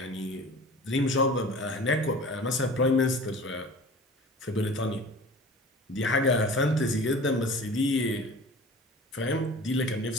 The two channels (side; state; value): both; normal; correlation 0.40